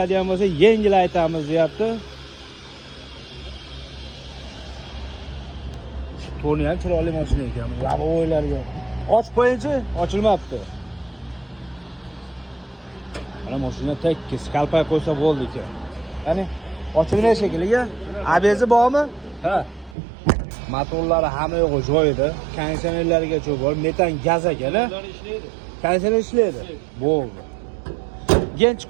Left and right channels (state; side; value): drops out; left; at 20.0 s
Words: bo'lsa, yengil aytamiz deyapti. To'ni ham chiroyli mashina ekan. Lavoylarga. Och qo'yinchi, ochilmabdi. Mana mashina tekis, kalpay qo'ysa bo'ldi ekan. Qani, ochilgan shekilliga. ABS bormi? Ha. Motorlari hamma yo'g'i joyida. Konditsionerlarigacha bor, metan gaz ekan-a? Konditsioner ishlaydi. Bo'ldi. Gench